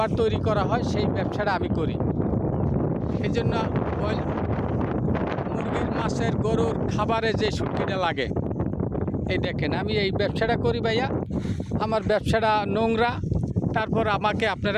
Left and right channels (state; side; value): identical; both; correlation 1.00